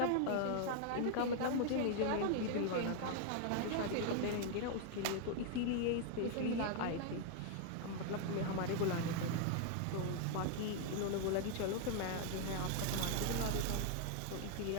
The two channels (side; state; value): both; different; correlation 0.00